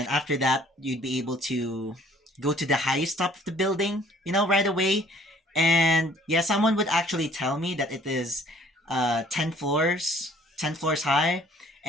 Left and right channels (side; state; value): both; normal; correlation 0.57